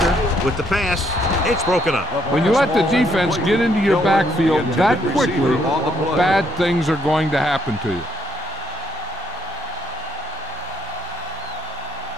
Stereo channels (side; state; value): both; normal; correlation 0.72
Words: with the pass. It's broken up. When you let the defense get into your backfield that quickly, bad things are going to happen to you.